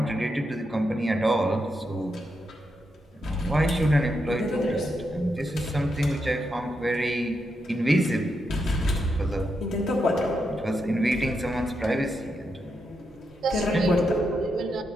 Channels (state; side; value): normal; both; correlation 0.84